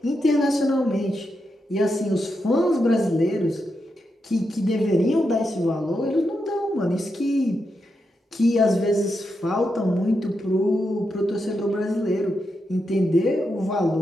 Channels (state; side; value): normal; both; correlation 0.85